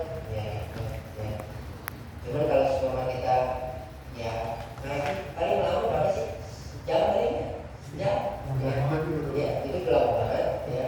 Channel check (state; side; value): identical; both; correlation 1.00